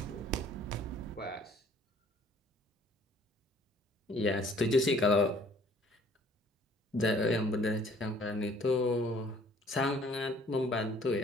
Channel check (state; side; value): normal; both; correlation 0.57